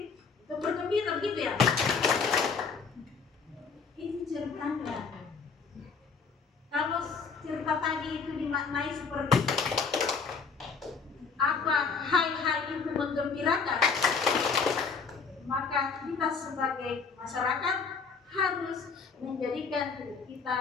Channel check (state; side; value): quieter; right; 5.3 dB